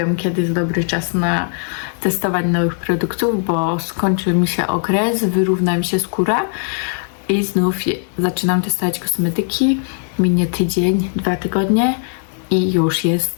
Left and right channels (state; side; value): silent; right; 57 dB below the other